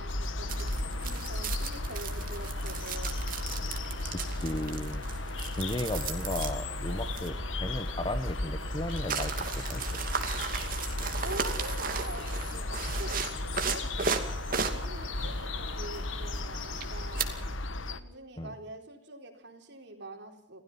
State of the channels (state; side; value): normal; both; correlation 0.45